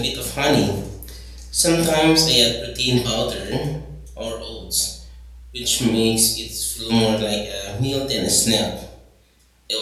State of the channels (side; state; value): both; identical; correlation 1.00